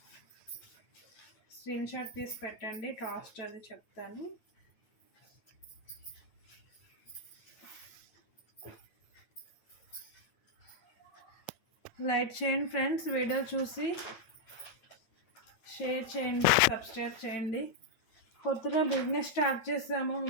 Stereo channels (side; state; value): right; late; 8.9 ms